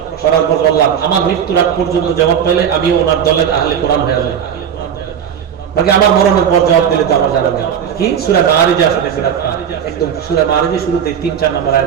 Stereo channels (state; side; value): quieter; left; 8.4 dB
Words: করার পর বললাম আমার মৃত্যুর আগ পর্যন্ত জবাব পাইলে আমিও ওনার দলের আহলে কোরআন হয়ে যাব, বাকি আমার মরণের পর জবাব দিলে তো আমার জানা নেই। কি সূরা মাআরিজ আসলে একদম সূরা মাআরিজের শুরুতে 3-4 নম্বর